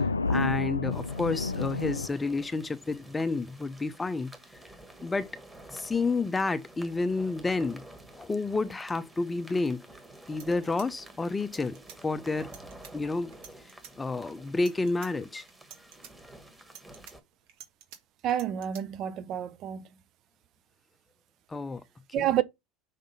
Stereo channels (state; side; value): normal; both; correlation 0.60